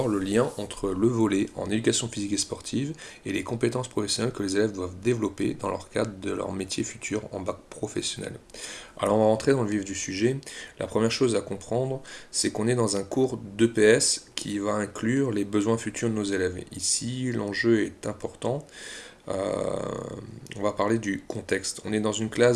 le lien entre le volley en éducation physique et sportive et les compétences professionnelles que les élèves doivent développer dans leur cadre de leur métier futur en bac professionnel. Alors on va rentrer dans le vif du sujet. La première chose à comprendre, c'est qu'on est dans un cours d'EPS qui va inclure les besoins futurs de nos élèves. Ici, l'enjeu est important. Euh, on va parler du contexte. On est dans une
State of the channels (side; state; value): both; identical; correlation 1.00